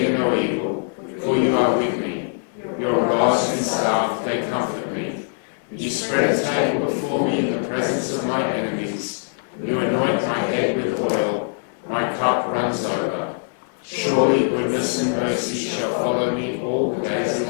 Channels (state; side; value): silent; right; digital silence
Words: no evil, for you are with me. Your rod and staff, they comfort me. You spread a table before me in the presence of my enemies. You anoint my head with oil. My cup runs over. Surely goodness and mercy shall follow me all the days of